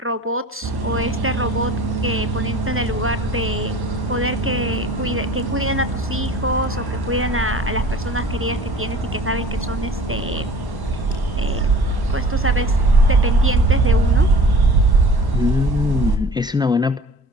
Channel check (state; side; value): normal; both; correlation 0.44